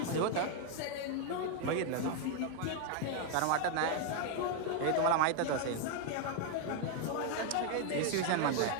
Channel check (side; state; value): both; different; correlation 0.00